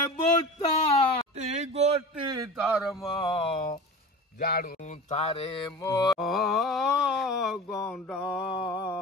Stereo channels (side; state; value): both; normal; correlation 0.33